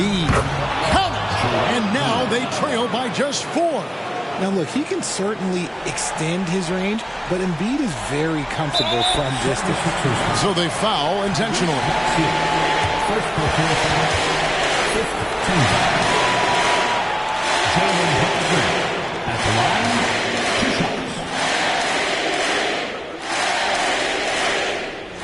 And now they trail by just 4. Now, look, he can certainly extend his range, but Embiid is very comfortable from distance. So they foul intentionally. First personal foul. 15. Jalen Hudson at the line. 2 shots.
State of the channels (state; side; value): identical; both; correlation 1.00